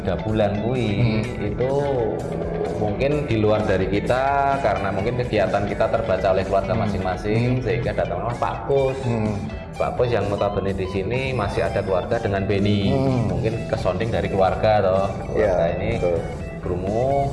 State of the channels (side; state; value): both; identical; correlation 1.00